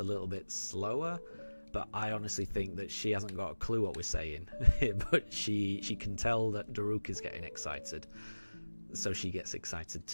little bit slower. But I honestly think that she hasn't got a clue what we're saying. But she can tell that Daruk is getting excited. So she gets excited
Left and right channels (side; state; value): both; inverted; correlation -1.00